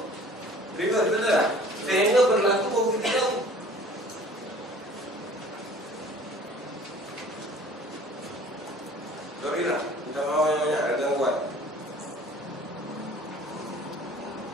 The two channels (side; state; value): both; normal; correlation 0.49